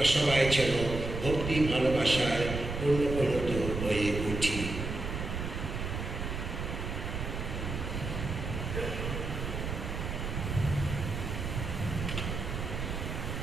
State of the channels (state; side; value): noise; right; rumble, 4 dB below the sound